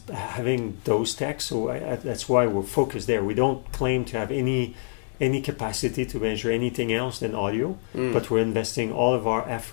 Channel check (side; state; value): right; silent; digital silence